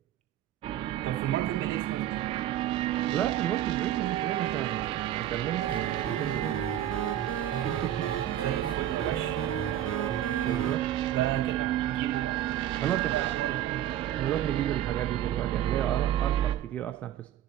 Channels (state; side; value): quieter; left; 11.9 dB